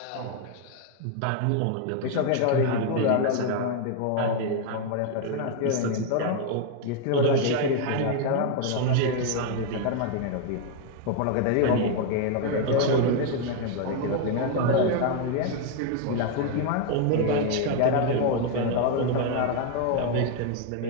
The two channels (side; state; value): both; different; correlation 0.00